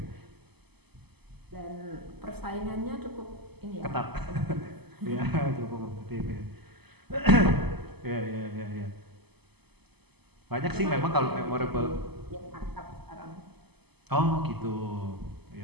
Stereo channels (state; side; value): late; left; 0.98 ms